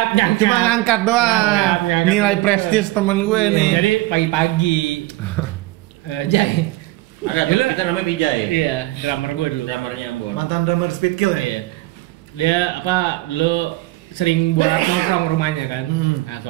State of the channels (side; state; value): left; quieter; 18.9 dB